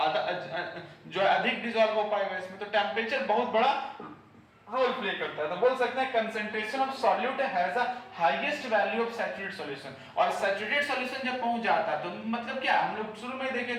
आधा जो अधिक डिसॉल्व हो पाएगा इसमें। तो टेंपरेचर बहुत बड़ा रोल प्ले करता है। तो बोल सकते हैं concentration of solute has a highest value of saturated solution. और सैचुरेटेड सॉल्यूशन जब पहुंच जाता है तो मतलब क्या, हम लोग शुरू में देखे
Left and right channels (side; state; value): both; identical; correlation 1.00